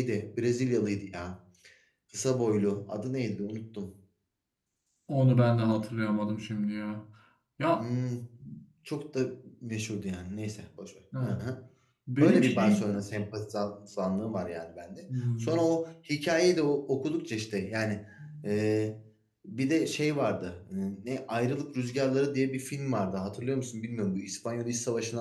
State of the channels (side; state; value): both; identical; correlation 1.00